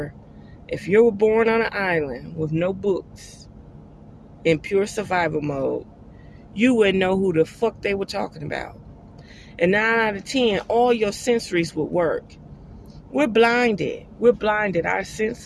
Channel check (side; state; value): both; identical; correlation 1.00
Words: if you were born on an island with no books, in pure survival mode, you wouldn't know who the fuck they were talking about. And 9 out of 10, all your sensories would work. We're blinded. Our